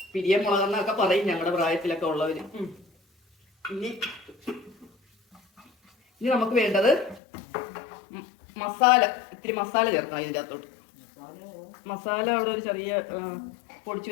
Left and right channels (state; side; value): drops out; right; at 7.2 s